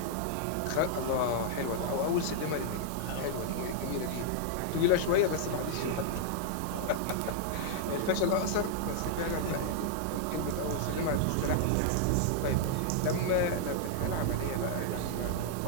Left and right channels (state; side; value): different; both; correlation -0.01